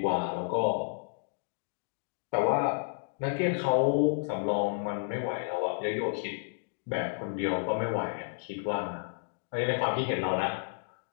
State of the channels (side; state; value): right; silent; digital silence